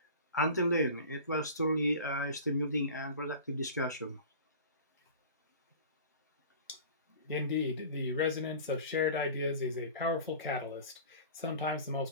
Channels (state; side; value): inverted; both; correlation -0.39